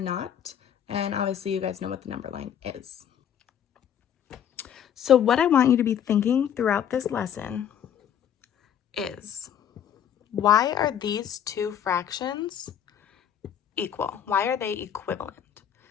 And obviously you guys know what the number line is. So what I want you to be thinking throughout this lesson is, why are these two fractions equal? Why are they equivalent?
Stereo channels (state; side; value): quieter; right; 9.2 dB